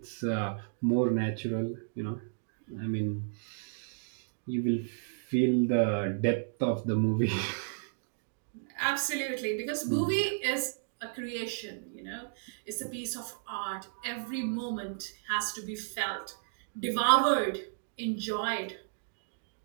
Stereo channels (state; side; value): silent; left; digital silence